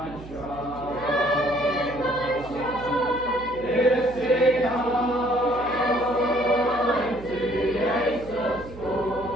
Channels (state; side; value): noise; right; hum, 16 dB below the sound